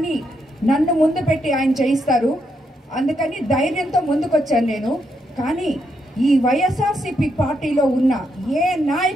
నన్ను ముందు పెట్టి ఆయన చేయిస్తారు. అందుకని ధైర్యంతో ముందుకొచ్చాను నేను. కానీ ఈ వైఎస్ఆర్సీపీ పార్టీలో ఉన్న ఏ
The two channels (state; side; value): normal; both; correlation 0.79